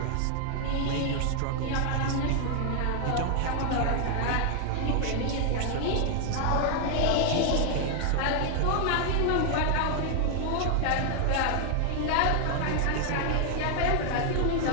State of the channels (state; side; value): different; both; correlation 0.00